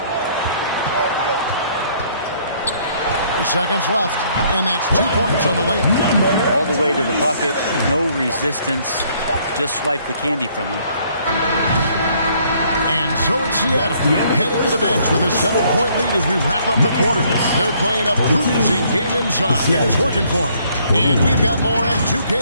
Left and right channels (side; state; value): both; inverted; correlation -0.65